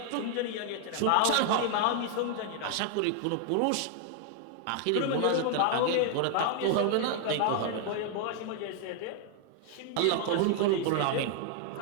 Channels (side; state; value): both; different; correlation 0.00